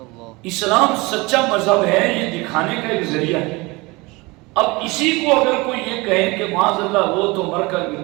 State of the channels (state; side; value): quieter; left; 24.2 dB